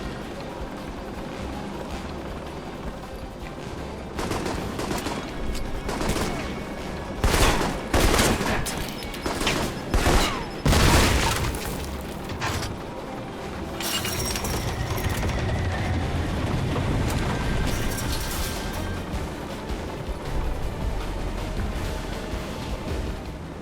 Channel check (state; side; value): identical; both; correlation 1.00